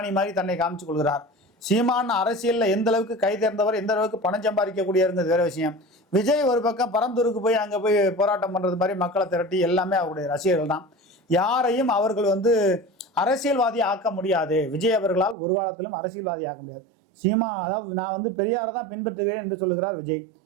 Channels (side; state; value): left; drops out; at 15.4 s